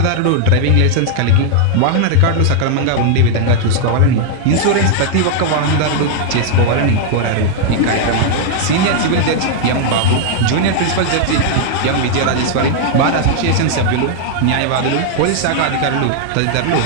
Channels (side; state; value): both; different; correlation -0.01